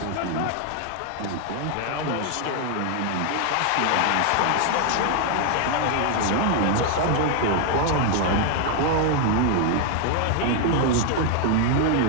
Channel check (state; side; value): different; both; correlation 0.00